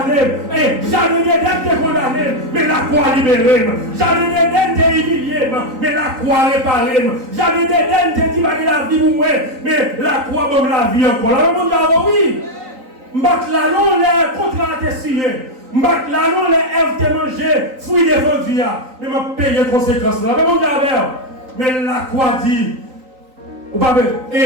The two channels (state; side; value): late; left; 3.9 ms